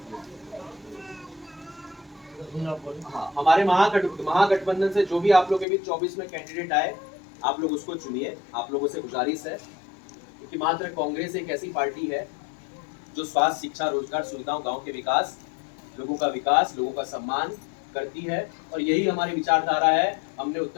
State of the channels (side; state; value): right; drops out; at 5.7 s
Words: हमारे महागठबंधन से जो भी आप लोग के बीच 24 में कैंडिडेट आए, आप लोग उसको चुनिए। आप लोगों से गुजारिश है, क्योंकि मात्र कांग्रेस एक ऐसी पार्टी है जो स्वास्थ्य, शिक्षा, रोजगार, सुविधाओं, गांव के विकास, लोगों का सम्मान करती है। और यही हमारी विचारधारा है। हमने